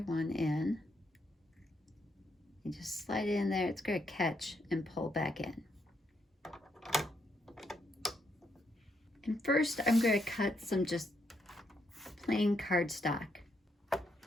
one in. You just slide it in there. It's going to catch and pull back in. And first I'm going to cut some just plain cardstock.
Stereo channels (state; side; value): normal; both; correlation 0.77